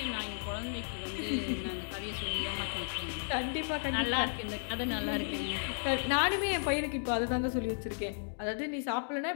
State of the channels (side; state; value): right; silent; digital silence